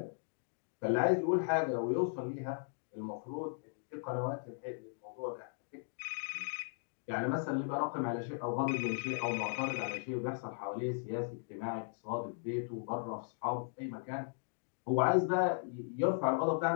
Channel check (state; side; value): silent; right; digital silence